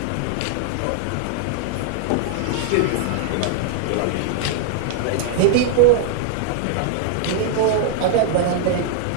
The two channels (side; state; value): both; different; correlation -0.01